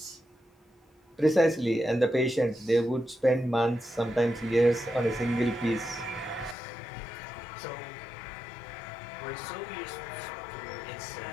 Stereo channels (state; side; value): drops out; right; at 6.6 s